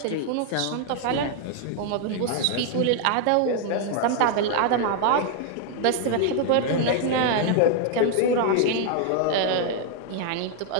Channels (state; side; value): different; both; correlation 0.00